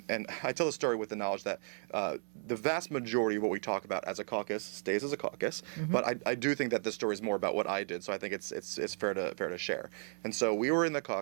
I tell the story with the knowledge that the vast majority of what we talk about as a caucus stays as a caucus, but I do think that this story is more about what I did, so I think it's fair to share. And so we were in the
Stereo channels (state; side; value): silent; left; 55 dB below the other